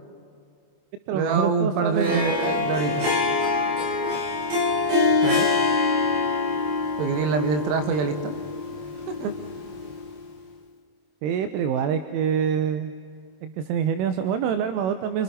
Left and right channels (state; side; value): late; left; 27 ms